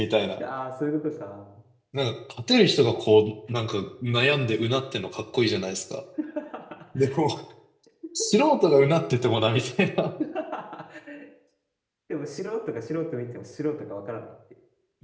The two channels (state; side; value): identical; both; correlation 1.00